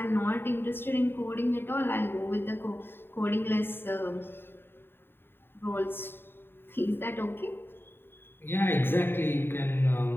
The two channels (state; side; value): late; right; 0.10 ms